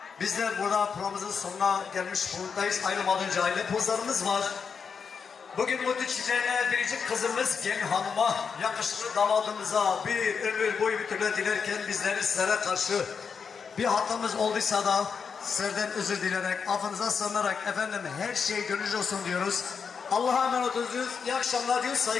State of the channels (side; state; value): right; quieter; 6.1 dB